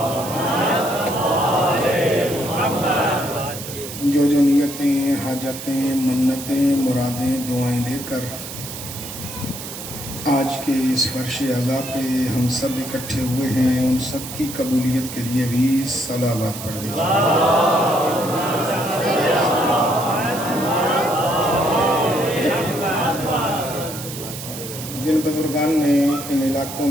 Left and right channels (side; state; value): right; noise; hiss, 10 dB below the sound